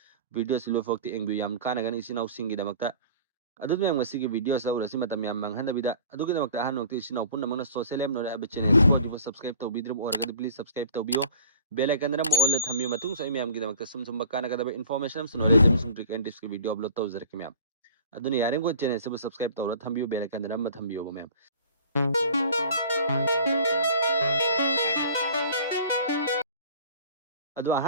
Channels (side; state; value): both; inverted; correlation -0.46